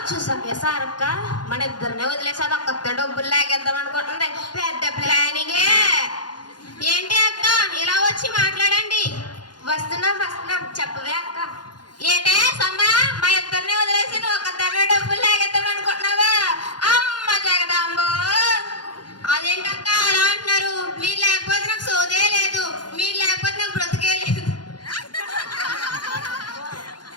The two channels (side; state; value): right; late; 0.70 ms